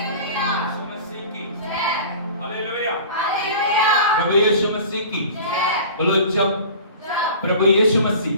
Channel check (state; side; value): inverted; both; correlation -0.40